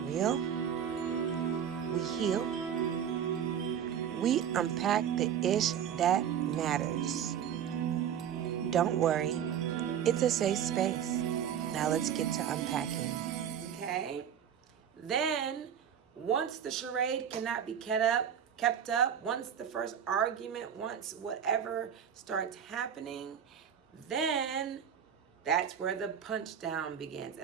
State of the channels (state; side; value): quieter; left; 8.9 dB